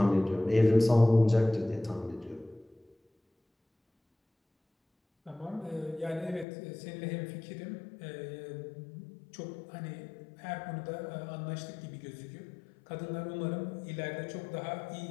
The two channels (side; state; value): right; drops out; at 6.5 s